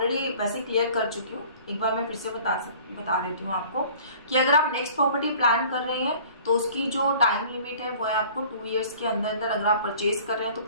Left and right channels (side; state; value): both; inverted; correlation -0.48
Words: वैसे क्लियर कर चुकी हूँ, एक बार मैं फिर से बता देती हूँ आपको कि अगर आप नेक्स्ट प्रॉपर्टी प्लान कर रहे हैं तो उसकी जो टाइम लिमिट है वो है आपको 2 years के अंदर अंदर अगर आप परचेज कर रहे हैं तो